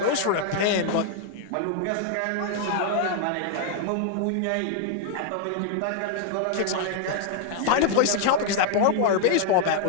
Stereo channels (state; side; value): different; both; correlation 0.00